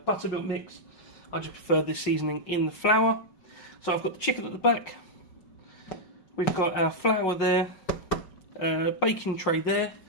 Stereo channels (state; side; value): late; right; 5.3 ms